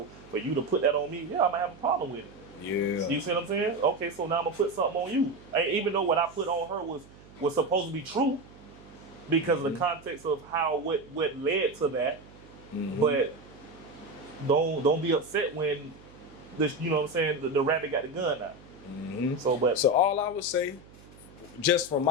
for you to put that on me, I might have a problem with it. Yeah. You see what I'm saying? Okay, so now I'm gonna put something on you. Even though what I put on her was supposed to be true, because of the context of what led to that. But don't be upset when the rabbit got the gun out. So all I would say, just from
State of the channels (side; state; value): right; noise; hum, 22 dB below the sound